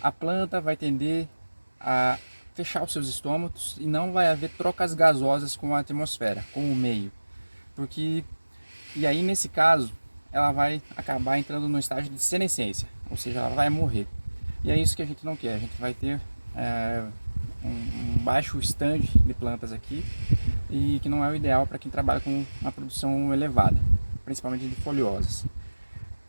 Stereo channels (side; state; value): both; inverted; correlation -1.00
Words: planta vai tender a fechar os seus estômatos e não vai haver trocas gasosas com a atmosfera, com o meio. E aí nesse caso, ela vai acabar entrando no estágio de senescência, ou seja, ela vai morrer. E é isso que a gente não quer, a gente vai ter um baixo stand de plantas aqui, e que não é o ideal para quem trabalha com uma produção elevada, principalmente de folhosas.